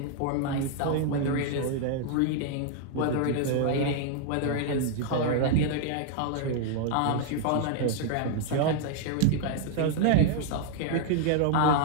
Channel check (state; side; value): different; both; correlation 0.00